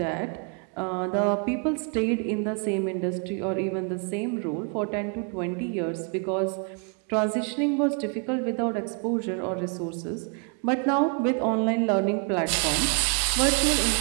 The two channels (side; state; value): left; quieter; 39.0 dB